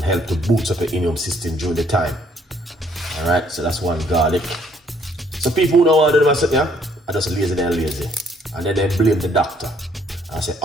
help to boost up your immune system during the time. Alright, so that's 1 garlic. So people who don't want to do myself, yeah, I just lazy and lazy. And then they blame the doctor. And I say,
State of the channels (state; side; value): normal; both; correlation 0.65